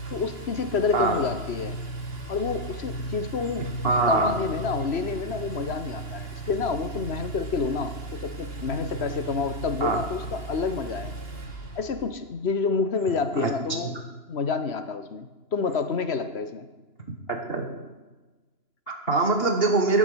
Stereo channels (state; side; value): late; right; 2.8 ms